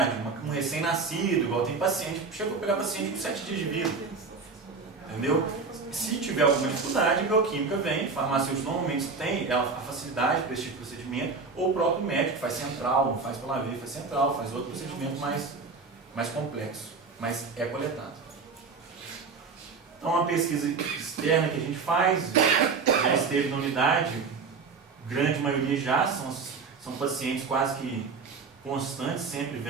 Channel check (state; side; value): quieter; left; 4.7 dB